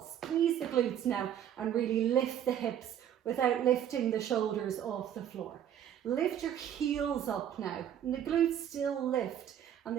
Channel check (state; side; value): quieter; left; 10.0 dB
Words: Squeeze the glutes now and really lift the hips without lifting the shoulders off the floor. Lift your heels up now, and the glutes still lift, and